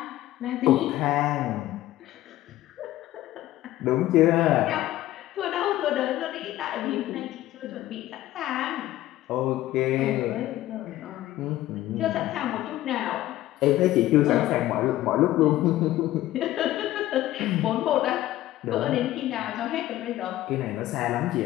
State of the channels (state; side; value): quieter; right; 15.1 dB